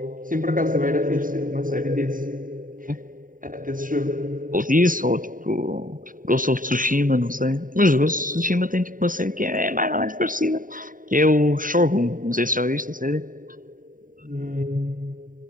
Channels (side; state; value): left; late; 0.39 ms